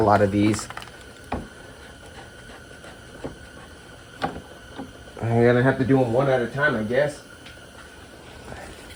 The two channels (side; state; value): both; identical; correlation 1.00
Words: of these. I'm gonna have to do them one at a time, I guess.